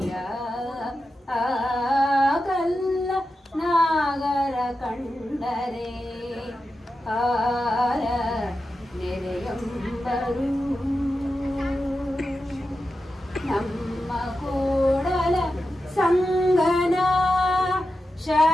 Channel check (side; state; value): both; normal; correlation 0.90